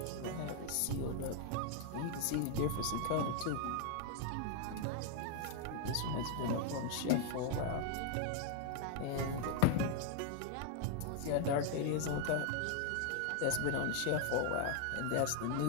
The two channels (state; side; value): different; both; correlation 0.00